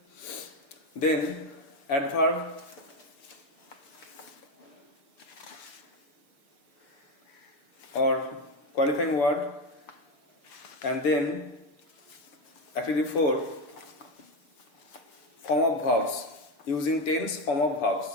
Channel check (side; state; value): right; late; 6.7 ms